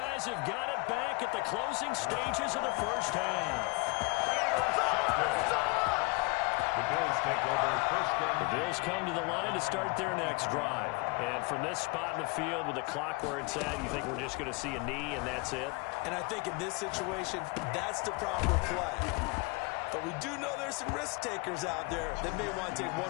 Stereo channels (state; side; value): quieter; right; 27.6 dB